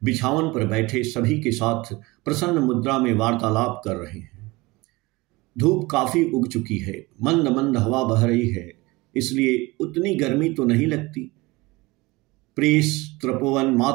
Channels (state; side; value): quieter; left; 22.5 dB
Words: बिछावन पर बैठे सभी के साथ प्रसन्न मुद्रा में वार्तालाप कर रहे हैं। धूप काफी उग चुकी है, मंद मंद हवा बह रही है, इसलिए उतनी गर्मी तो नहीं लगती। प्रेस, तपोवन,